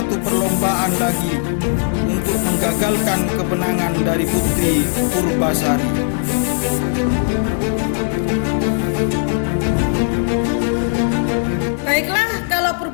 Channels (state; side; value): silent; right; digital silence